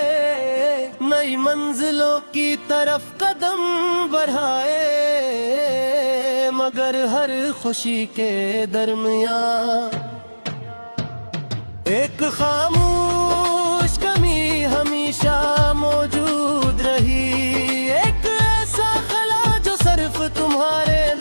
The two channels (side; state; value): both; inverted; correlation -1.00